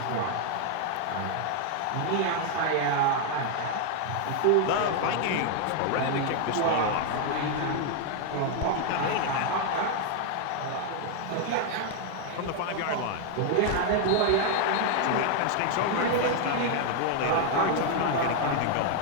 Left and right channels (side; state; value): both; different; correlation 0.00